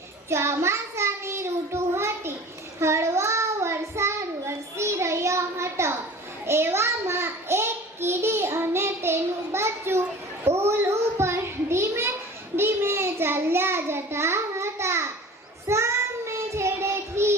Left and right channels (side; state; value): both; normal; correlation 0.41